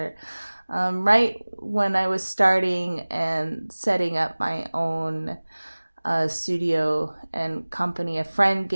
right when I was starting and setting up my own studio and company. A friend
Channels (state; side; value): inverted; both; correlation -1.00